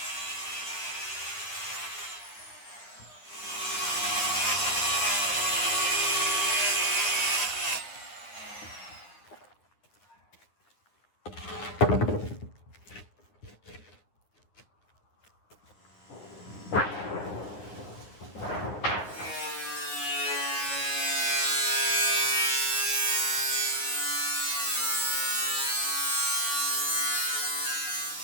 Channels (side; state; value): right; late; 9.9 ms